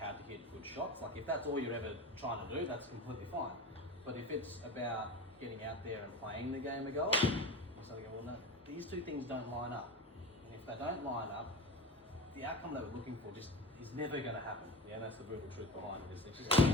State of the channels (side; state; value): both; normal; correlation 0.30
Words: to hit good shots. Like if that's all you're ever trying to do, that's completely fine. But if it's about getting out there and playing the game of golf, you sort of go, well, no, these two things don't line up. And if they don't line up, the outcome that we're looking for just is never going to happen. Yeah, that's the brutal truth behind it. Is it just